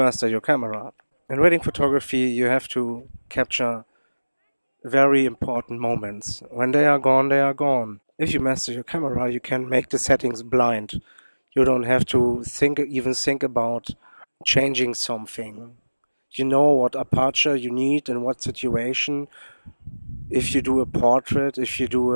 your camera. In wedding photography you have to capture very important moments. When they are gone, they are gone. If you master your camera, you can make the settings blind. You don't have to even think about changing something. You know what aperture you need in what situation. If you do a portrait, if you do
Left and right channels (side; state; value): both; inverted; correlation -1.00